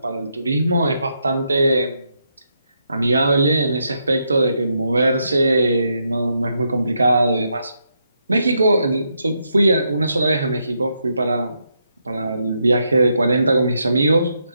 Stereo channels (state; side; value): inverted; both; correlation -0.80